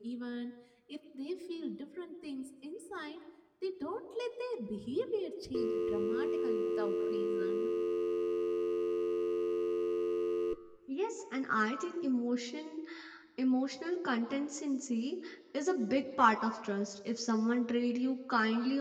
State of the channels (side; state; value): both; identical; correlation 1.00